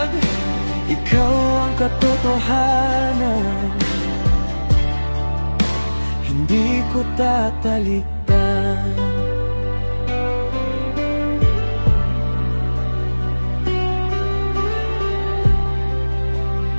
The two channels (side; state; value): both; inverted; correlation -1.00